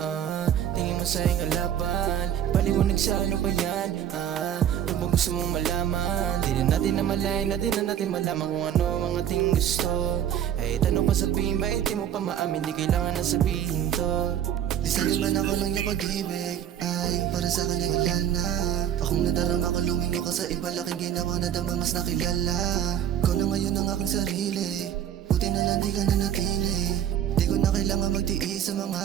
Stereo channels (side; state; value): left; quieter; 10.1 dB